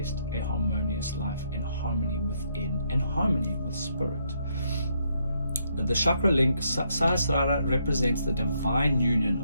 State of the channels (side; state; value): both; inverted; correlation -0.74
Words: a harmonious life and harmony within and harmony with spirit. The chakra link, Sahasrara, represents the divine union